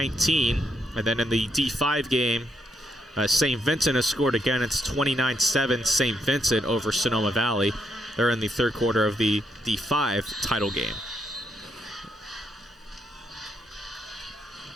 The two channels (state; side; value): normal; both; correlation 0.77